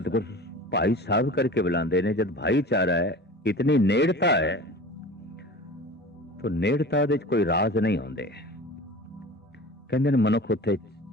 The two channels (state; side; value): normal; both; correlation 0.37